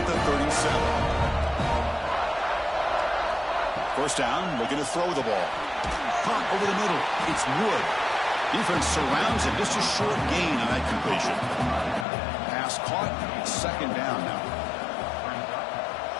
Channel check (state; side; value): drops out; right; at 12.1 s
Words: the 37. First down, looking to throw the ball. Caught over the middle. It's Wood. Defense surrounds him. Just a short gain on that completion. Pass caught. Second down now.